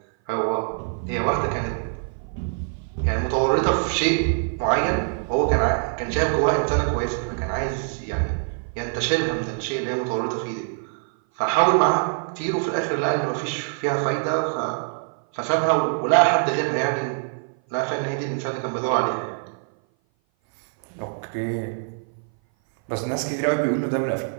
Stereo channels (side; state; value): left; silent; 57 dB below the other